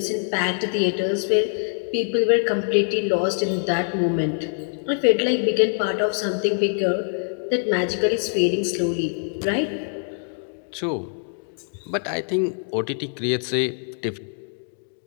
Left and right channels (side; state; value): right; silent; 63 dB below the other